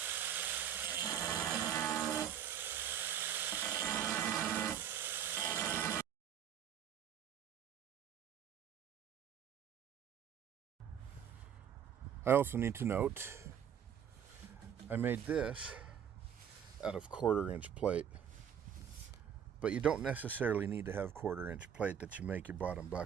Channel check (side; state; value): left; quieter; 8.8 dB